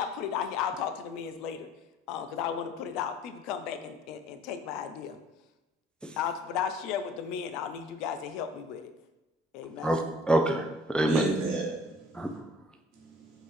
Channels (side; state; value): both; normal; correlation 0.53